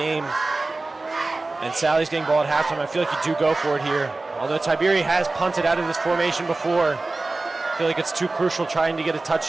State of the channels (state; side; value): quieter; left; 3.3 dB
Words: and Sally's getting ball at halftime. I feel like you do go for it here. Although Tiberi has punted out of this formation before, I feel like it's too crucial trying to get a